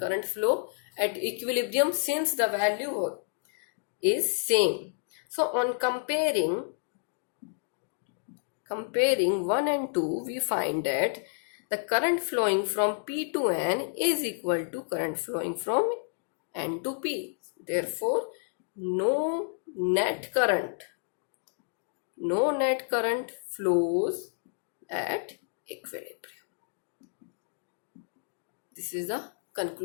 flow at equilibrium since the value is same. So on comparing 1 and 2, we find that the current flowing from P to N is equal to current flowing from N to P. Therefore, no net current flows at equilibrium. This is the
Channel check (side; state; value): right; silent; digital silence